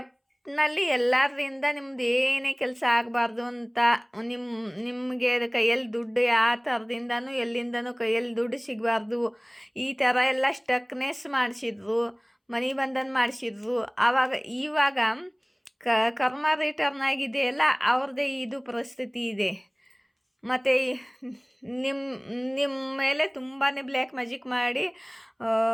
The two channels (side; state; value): both; identical; correlation 1.00